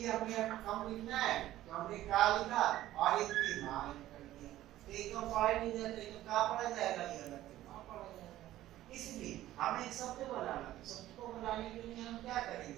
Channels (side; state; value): left; quieter; 14.4 dB